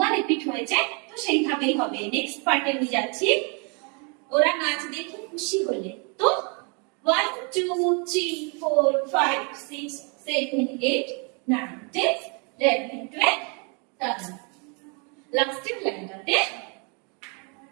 রিপিট হয়েছে তো সেইভাবেই হবে নেক্সট পার্টে নিয়ে যাচ্ছি ওরা নাচ দেখে খুশি হলে তো 1 2 3 4 5 6 7 8 9 10 11 12 লাস্টের লাইনটাতে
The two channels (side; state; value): left; quieter; 35.0 dB